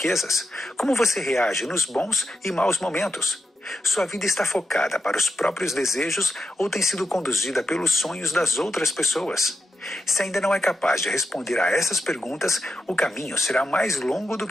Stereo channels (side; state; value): both; normal; correlation 0.86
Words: Como você reage nos bons e maus momentos? Sua vida está focada para os próprios desejos ou tem sido conduzida pelos sonhos das outras pessoas? Se ainda não é capaz de responder a essas perguntas, o caminho será mais longo do